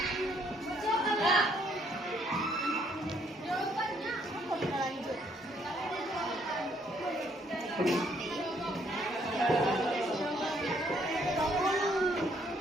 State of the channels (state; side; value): normal; both; correlation 0.68